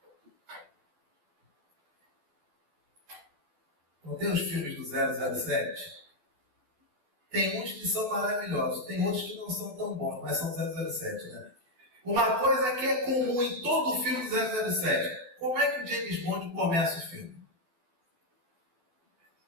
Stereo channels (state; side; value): late; left; 12 ms